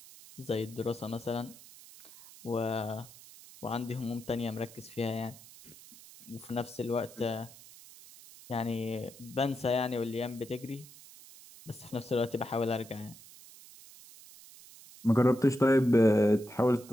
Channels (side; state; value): right; noise; hiss, 20 dB below the sound